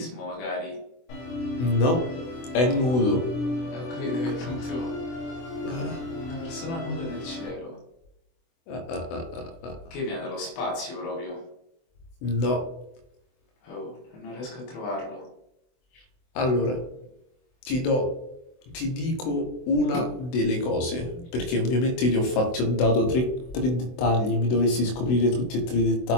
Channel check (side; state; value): right; late; 24 ms